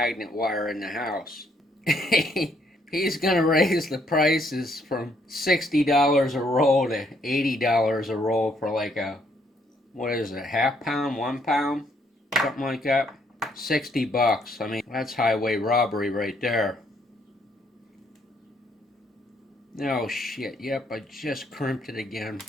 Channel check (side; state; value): both; normal; correlation 0.70